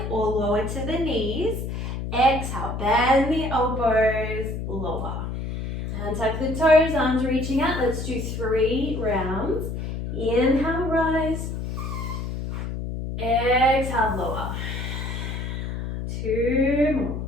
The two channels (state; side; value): noise; left; hum, 5 dB below the sound